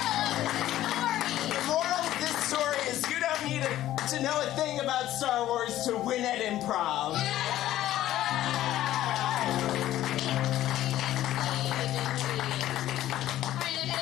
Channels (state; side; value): quieter; right; 13.7 dB